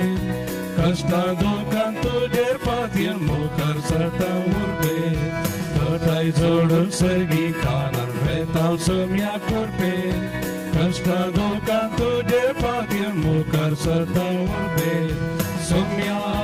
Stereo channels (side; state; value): both; identical; correlation 1.00